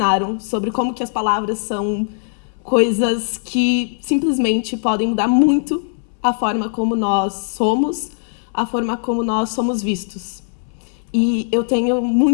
sobre como que as palavras são coisas que simplesmente podem mudar muito a forma como nós somos, a forma como nós somos vistos. E eu tenho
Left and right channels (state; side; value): silent; right; 66 dB below the other